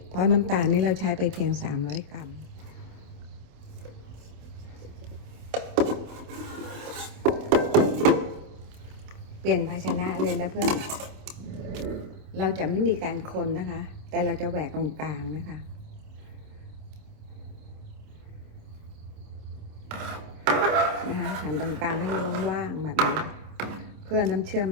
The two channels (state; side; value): late; left; 27 ms